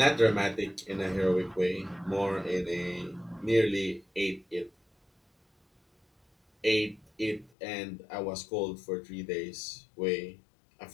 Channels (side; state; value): right; drops out; at 7.5 s